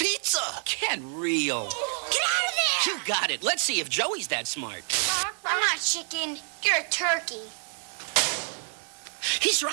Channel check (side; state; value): left; silent; 59 dB below the other